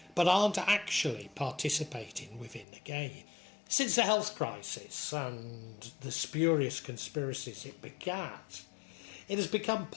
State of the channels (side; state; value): right; drops out; at 2.7 s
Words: but aren't actually participating within the game. Since the health crisis and the spurious conspiracies it begat, it has become